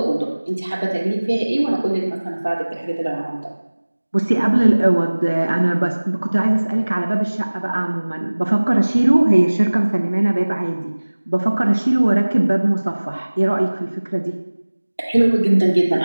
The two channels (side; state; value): both; inverted; correlation -1.00